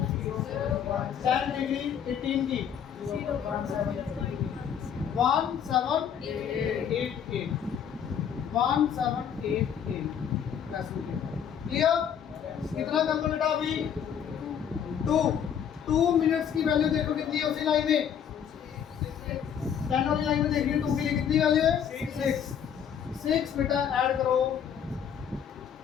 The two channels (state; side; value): quieter; right; 8.3 dB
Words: 10 डिग्री 18 की 1788 1788। क्लियर? कितना कर दो बेटा अभी? 2 मिनट्स की वैल्यू देखो कितनी है उसी लाइन में, 10 वाली लाइन में देखिए 2 के लिए कितनी वैल्यू है? 6 बेटा ऐड करो।